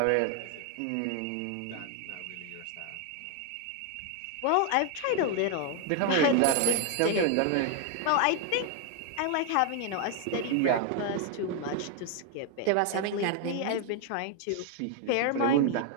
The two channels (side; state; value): both; different; correlation 0.00